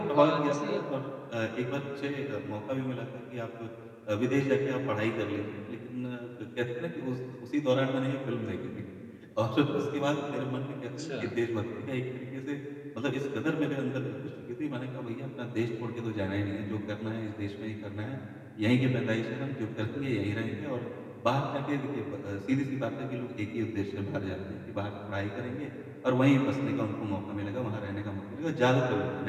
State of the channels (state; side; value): identical; both; correlation 1.00